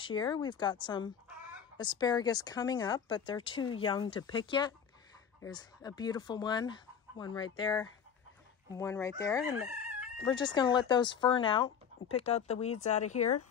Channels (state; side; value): quieter; right; 7.5 dB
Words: year, we've got some asparagus coming up, but they're too young to pick yet. There's a beautiful one right there, and one right there. And we're just going to let those fern out and pick out the weeds out of here.